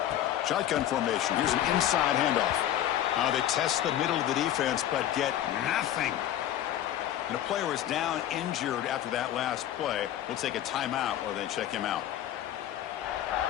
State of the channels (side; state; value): right; quieter; 11.9 dB